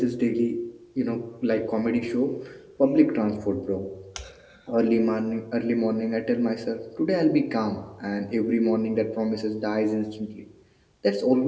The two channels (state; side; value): identical; both; correlation 1.00